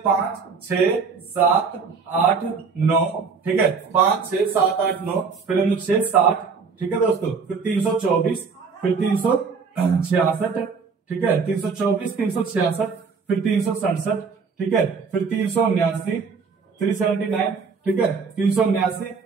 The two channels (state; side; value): quieter; left; 5.2 dB